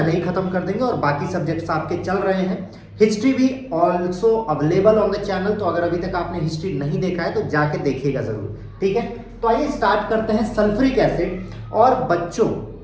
ही खत्म कर देंगे और बाकी सब्जेक्ट्स आपके चल रहे हैं। हिस्ट्री भी also available on the channel, तो अगर अभी तक आपने हिस्ट्री नहीं देखा है तो जाके देखिएगा जरूर, ठीक है। तो आइए स्टार्ट करते हैं सल्फ्यूरिक एसिड। और बच्चों,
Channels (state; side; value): identical; both; correlation 1.00